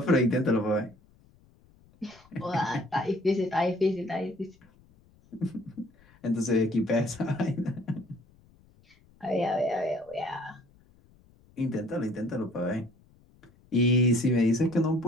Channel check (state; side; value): noise; left; rumble, 29 dB below the sound